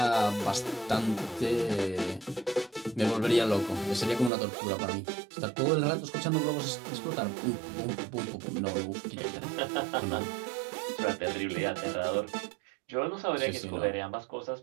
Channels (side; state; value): left; drops out; at 4.3 s